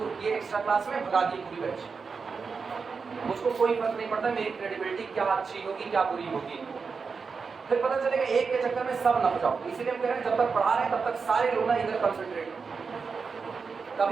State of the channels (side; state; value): left; quieter; 5.1 dB